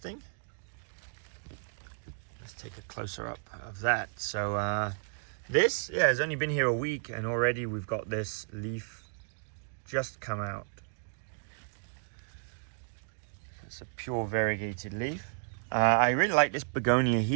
Let's take a closer up of that. So this has only been here a week and already we've got this leaf just come out. It's a pure variegated leaf. I really like this begonia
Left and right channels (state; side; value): silent; left; 56 dB below the other